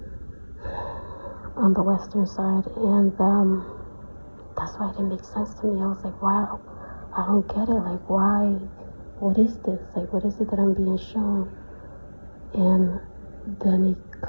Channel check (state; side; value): inverted; both; correlation -1.00